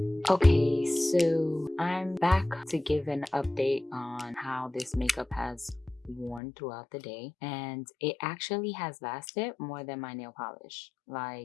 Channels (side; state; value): right; drops out; at 6.4 s